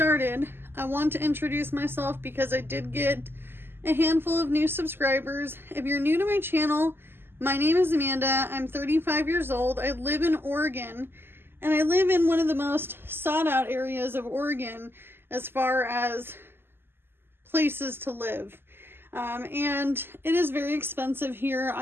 I want to introduce myself because I did get a handful of new subscribers. If you're new to my channel, my name is Amanda. I'm 35 years old. I live in Oregon, and I live in one of the most sought out areas of Oregon as far as places to live. And it is very expensive here.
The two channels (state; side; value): late; left; 0.11 ms